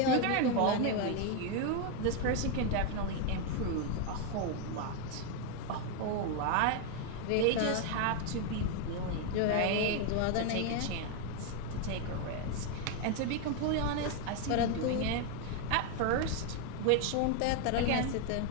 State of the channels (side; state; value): both; different; correlation 0.01